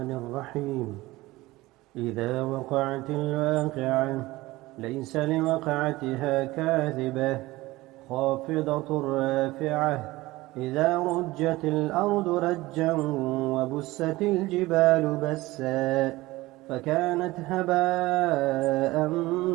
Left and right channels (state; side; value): quieter; left; 19.2 dB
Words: الرحيم. إذا وقعت الواقعة ليس لوقعتها كاذبة خافضة رافعة. إذا رجت الأرض رجا وبست الجبال بسا فكانت هباء